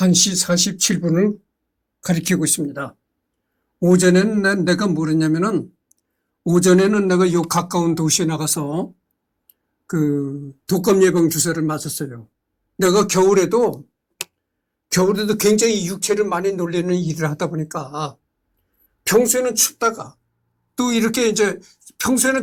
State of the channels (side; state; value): both; identical; correlation 1.00